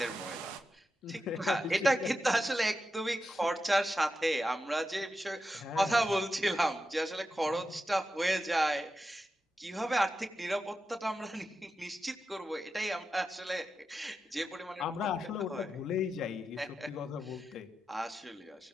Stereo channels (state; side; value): normal; both; correlation 0.89